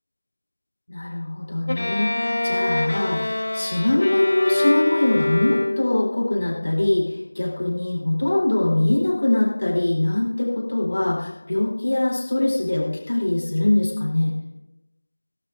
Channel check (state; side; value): inverted; both; correlation -1.00